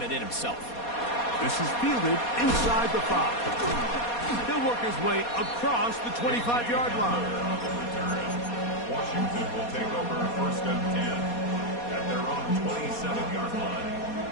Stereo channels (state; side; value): late; right; 4.2 ms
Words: it in himself. This is fielded inside the 5. He'll work his way across the 25-yard line. Washington will take over first and 10 at their own 27-yard line.